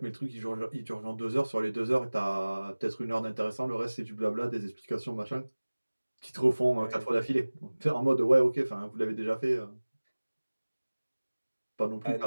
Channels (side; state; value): both; inverted; correlation -1.00